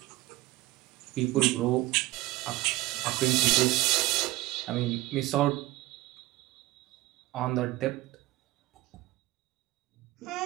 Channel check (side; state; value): left; quieter; 18.8 dB